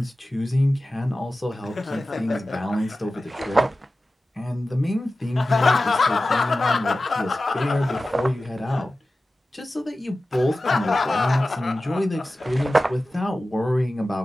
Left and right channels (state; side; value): normal; both; correlation 0.95